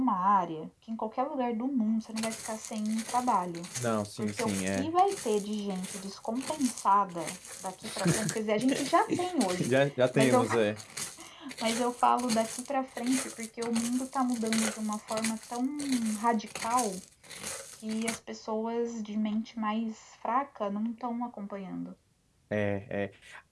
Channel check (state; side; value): identical; both; correlation 1.00